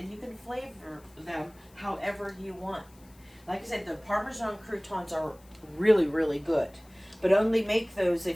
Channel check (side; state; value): left; noise; hiss, 28 dB below the sound